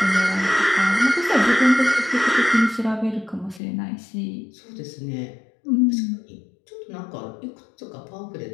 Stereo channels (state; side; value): drops out; right; at 3.6 s